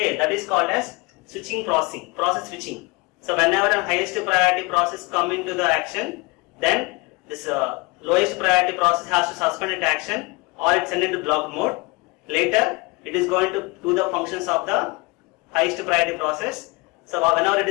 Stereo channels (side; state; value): right; quieter; 26.5 dB